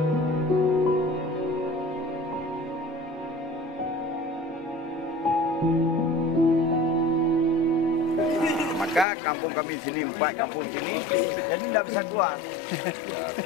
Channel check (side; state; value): right; drops out; at 9.1 s